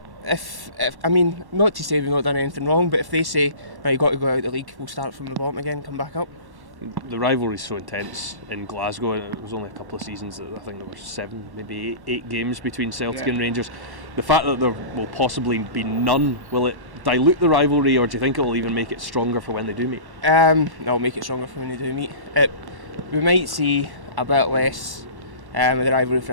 If I mean, not to say we've not done anything wrong, but if they say right, you've got to go out of the league, we'll start from the bottom again, and come back up. The rivalry is so intense in Glasgow, and it was only a couple of seasons that I think there were 7, maybe 8 games between Celtic and Rangers. The fact that there will possibly be none, will it dilute the rivalry, or do you think it will even make it stronger for when they do meet? No, it'll make it stronger for when they do meet. We might see a bit less of the rivalry for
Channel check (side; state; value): left; late; 1.1 ms